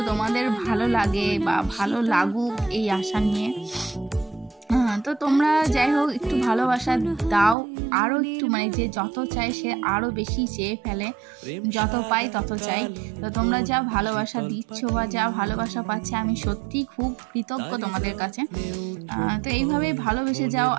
তোমাদের ভালো লাগে বা ভালো লাগুক এই আশা নিয়ে। তো তোমরা যাই হোক একটু ভালোবাসা দাও, আরও একটু মানে যে যত চাই সে আরও বেশি চেয়ে ফেলে, যত পাই তত চাই। তো তোমরা যা ভালোবাসা দিচ্ছ বা যা ভালোবাসা পাচ্ছে আমি সত্যিই খুব কৃতজ্ঞ তোমাদের কাছে। তো এইভাবে ভালোবেসে যাও।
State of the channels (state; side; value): drops out; left; at 7.6 s